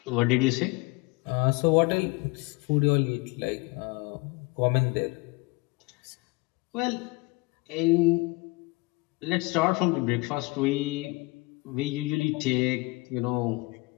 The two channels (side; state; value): right; quieter; 25.1 dB